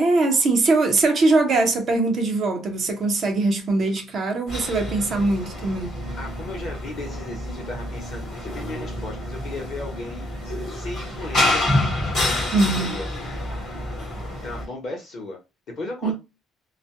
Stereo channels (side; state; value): both; normal; correlation 0.74